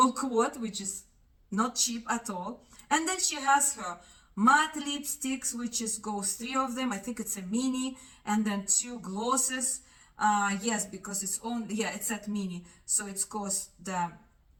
quote, which is not cheap at all. And then she has her matte lipsticks, which is goes 3 of them. I think it's a mini, and then 2 glosses. Yes, because it's only, yeah, it's at mini, so it's cost the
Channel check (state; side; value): identical; both; correlation 1.00